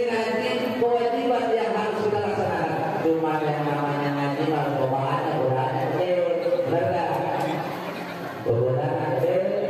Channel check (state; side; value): identical; both; correlation 1.00